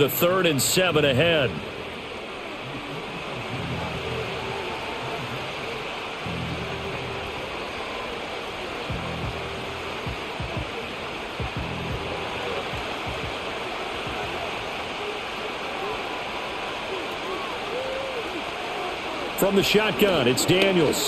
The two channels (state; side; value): identical; both; correlation 1.00